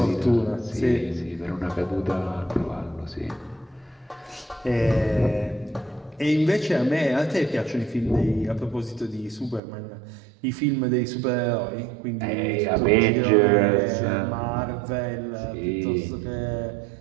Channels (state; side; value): drops out; left; at 9.6 s